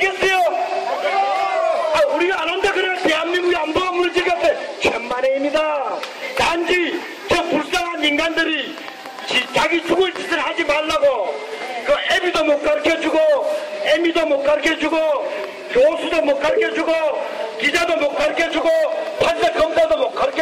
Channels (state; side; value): identical; both; correlation 1.00